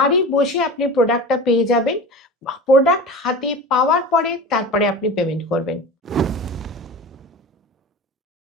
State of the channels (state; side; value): normal; both; correlation 0.33